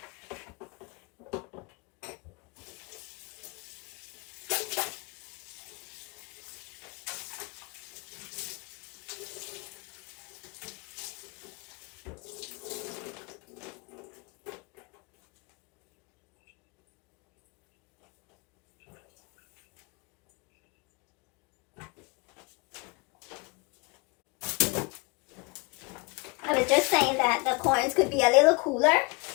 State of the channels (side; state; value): right; quieter; 28.4 dB